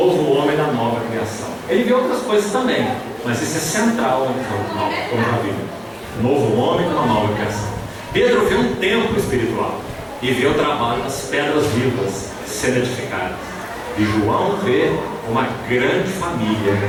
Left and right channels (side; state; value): both; identical; correlation 1.00